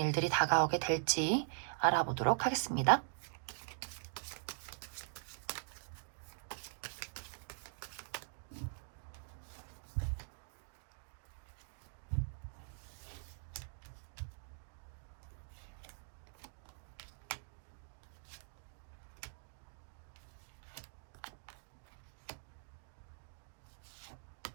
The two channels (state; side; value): silent; left; digital silence